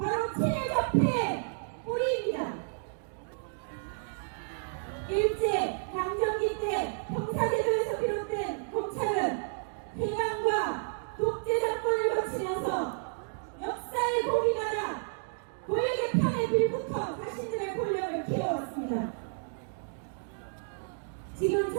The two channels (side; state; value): left; silent; digital silence